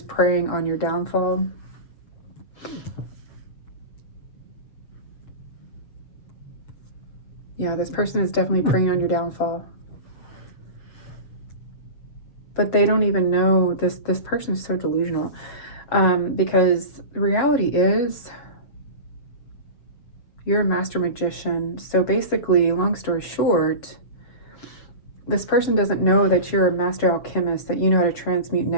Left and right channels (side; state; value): right; late; 7.4 ms